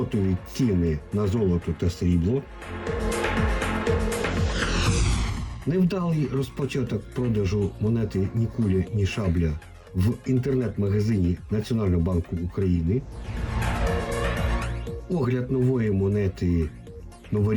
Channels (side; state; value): both; identical; correlation 1.00